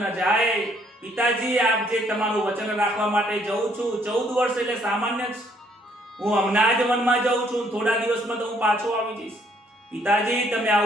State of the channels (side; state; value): both; normal; correlation 0.66